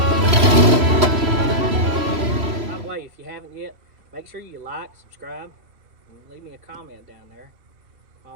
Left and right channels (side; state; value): left; late; 3.0 ms